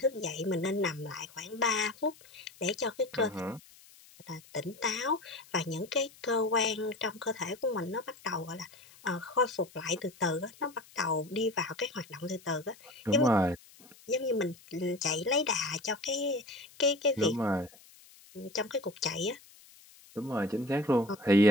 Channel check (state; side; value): noise; left; hiss, 24 dB below the sound